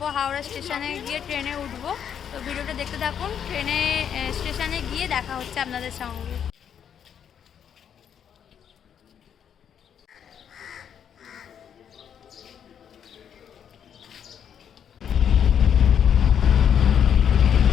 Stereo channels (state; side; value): quieter; right; 8.5 dB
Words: হাওড়া স্টেশনে গিয়ে ট্রেনে উঠবো। তো ভিডিওটা দেখতে থাকুন, ট্রেনে স্টেশনে গিয়ে দেখা হচ্ছে আপনাদের সঙ্গে।